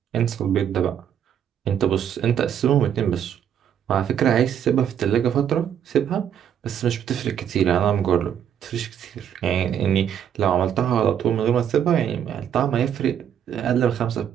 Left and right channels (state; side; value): quieter; left; 9.1 dB